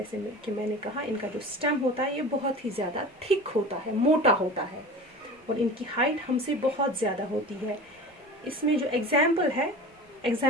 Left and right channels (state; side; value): normal; both; correlation 0.36